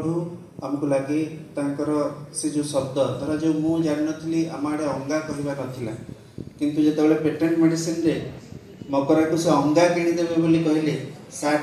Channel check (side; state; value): both; identical; correlation 1.00